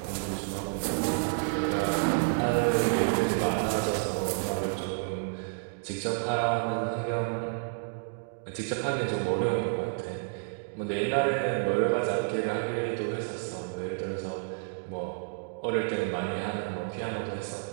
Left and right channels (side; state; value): left; silent; digital silence